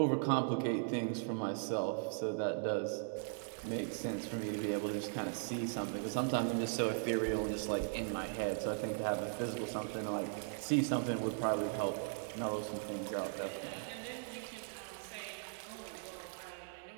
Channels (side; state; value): left; silent; digital silence